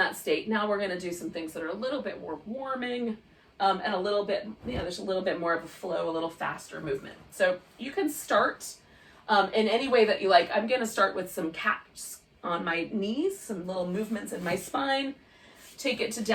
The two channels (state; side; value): identical; both; correlation 1.00